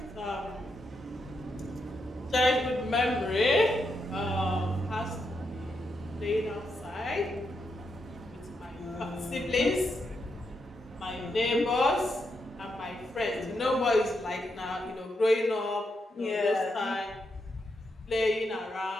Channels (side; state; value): both; normal; correlation 0.82